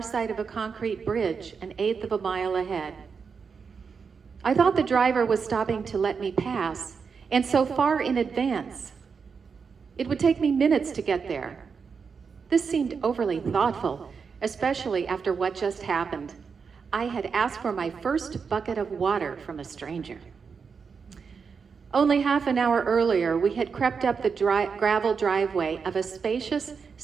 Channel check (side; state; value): left; quieter; 5.7 dB